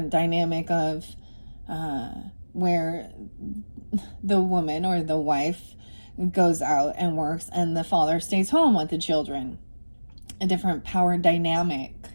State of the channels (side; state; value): both; inverted; correlation -1.00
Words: dynamic of where the woman or the wife goes out and works and the father stays home with the children. A different power dynamic.